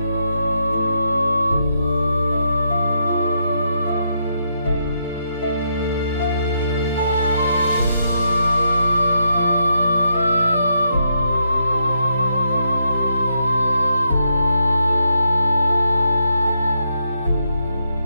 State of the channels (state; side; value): inverted; both; correlation -0.79